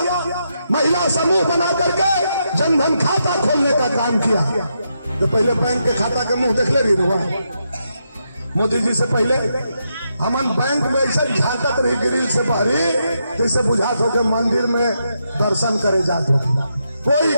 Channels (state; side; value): inverted; both; correlation -0.82